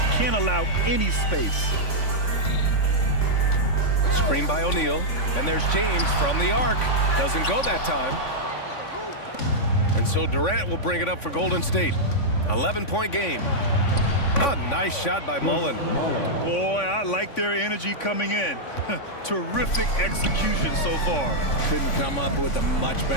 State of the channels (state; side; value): late; right; 3.5 ms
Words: Can't allow any space. Screen by O'Neal. And there's James from the arc. Doesn't go that time. And so Durant will bring it up for Golden State. 11-point game. A nice shot by Mullen. Boy, I like their energy coming in. Terrific execution so far. Couldn't come up with a much